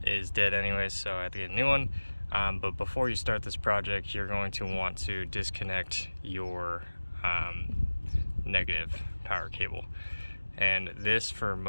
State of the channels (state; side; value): inverted; both; correlation -1.00